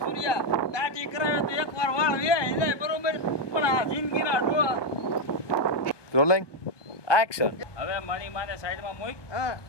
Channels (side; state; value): right; late; 1.2 ms